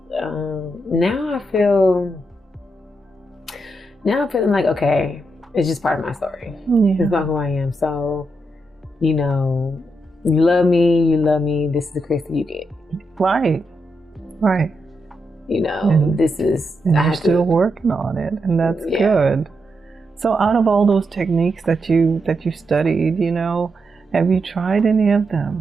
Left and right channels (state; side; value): normal; both; correlation 0.83